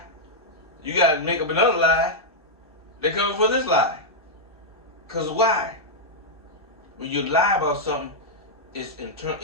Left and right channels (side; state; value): both; normal; correlation -0.05